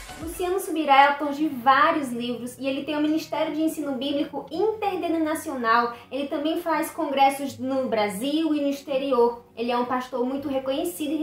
Luciano Subirá é autor de vários livros e ele tem um Ministério de Ensino Bíblico Interdenominacional. Ele também faz congressos no Brasil e no exterior. Ele é um pastor muito reconhecido e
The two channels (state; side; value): identical; both; correlation 1.00